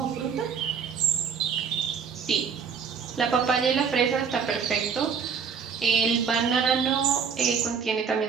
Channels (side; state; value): left; quieter; 6.5 dB